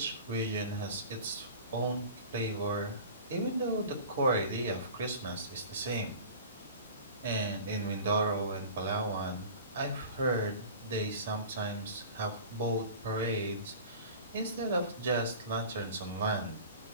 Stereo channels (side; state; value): both; inverted; correlation -0.39